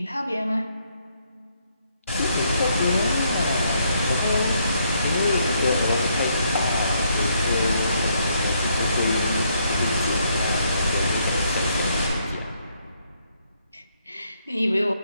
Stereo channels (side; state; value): both; inverted; correlation -0.73